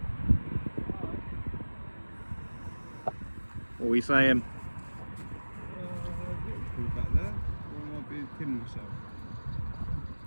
What are we saying? Back there, or I might be kidding myself.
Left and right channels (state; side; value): inverted; both; correlation -1.00